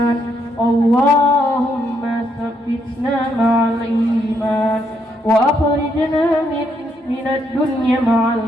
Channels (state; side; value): normal; both; correlation 0.75